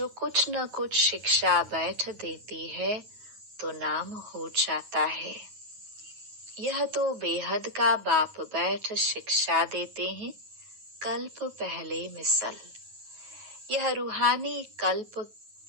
कुछ न कुछ शिक्षा बैठ देती है तो नाम हो जाता है। यह तो बेहद का बाप बैठ शिक्षा देते हैं, कल्प पहले मिसल। यह रूहानी कल्प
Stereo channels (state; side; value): late; left; 9.3 ms